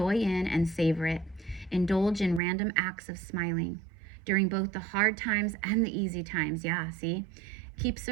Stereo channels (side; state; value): left; drops out; at 2.4 s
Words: in and savor it. Indulge in random acts of smiling during both the hard times and the easy times. Yeah, see? Keep